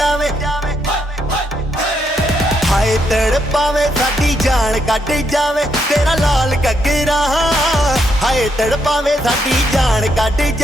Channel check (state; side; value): normal; both; correlation 0.77